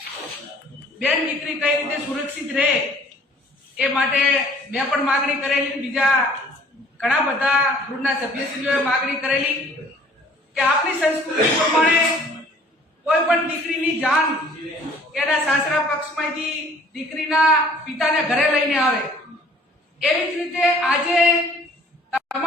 બેન દીકરી કઈ રીતે સુરક્ષિત રહે એ માટે મેં પણ માગણી કરેલી, બીજા ઘણા બધા ગૃહના સભ્યશ્રીઓએ માગણી કરેલી કે આપણી સંસ્કૃતિ પ્રમાણે કોઈ પણ દીકરીની જાન એના સાસરા પક્ષમાંથી દીકરીના પિતાને ઘરે લઈને આવે। એવી જ રીતે આજે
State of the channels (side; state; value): both; normal; correlation 0.54